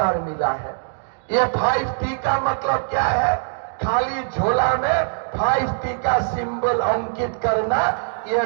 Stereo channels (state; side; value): silent; left; digital silence